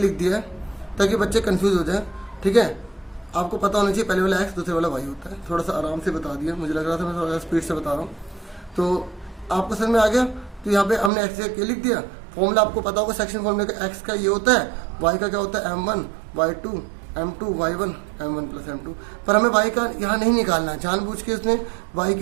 दिया है ताकि बच्चे कंफ्यूज हो जाए, ठीक है। आपको पता होना चाहिए पहले वाला x दूसरे वाला y होता है। थोड़ा सा आराम से बता दिया, मुझे लग रहा था मैं थोड़ा स्पीड से बता रहा हूँ, तो आपको समझ में आ गया। तो यहाँ पे हमने x के लिख दिया, फॉर्मूला आपको पता होगा सेक्शन फॉर्मूले का, x का ये होता है, y का क्या होता है m1 y2 m2 y1 m1 plus m2। पर हमें y का यहाँ नहीं निकालना है, जानबूझ के उसने y की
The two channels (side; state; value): left; drops out; at 11.1 s